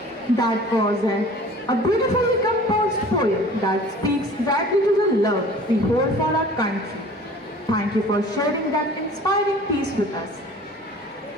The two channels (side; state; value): both; normal; correlation 0.46